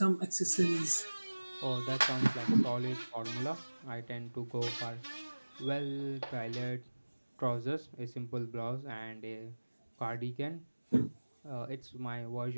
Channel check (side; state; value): both; inverted; correlation -1.00